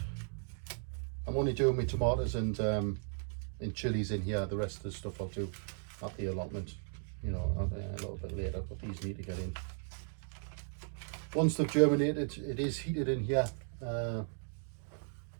I'm only doing my tomatoes and chilies in here. The rest of the stuff I'll do at the allotment, you know, a little bit later. But these need to get in. Once they've germinated, it is heated in here.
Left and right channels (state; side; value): silent; left; 54 dB below the other